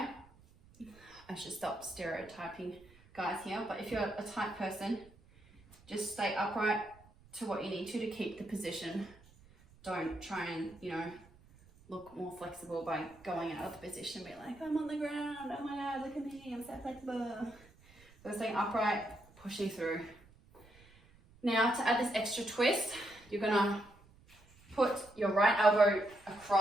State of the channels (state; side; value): noise; right; rumble, 26 dB below the sound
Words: I should stop stereotyping guys here, but if you're a tight person, just stay upright to what you need to keep the position. Don't try and, look more flexible by going out of the position and be like, I'm on the ground, oh my God, look at me, I'm so flexible. So staying upright, pushing through. Now to add this extra twist, you're gonna put your right elbow